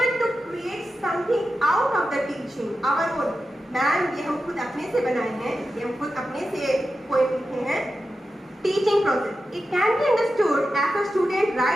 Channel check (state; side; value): normal; both; correlation 0.91